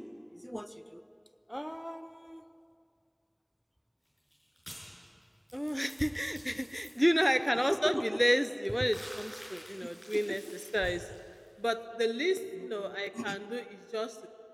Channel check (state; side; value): identical; both; correlation 1.00